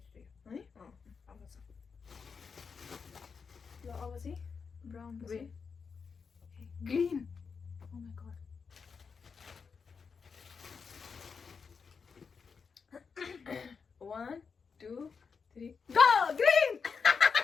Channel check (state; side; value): quieter; right; 5.6 dB